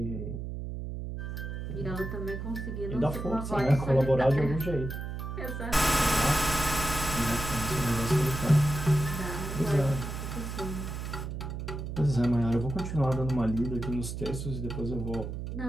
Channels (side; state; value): right; noise; hum, 6 dB below the sound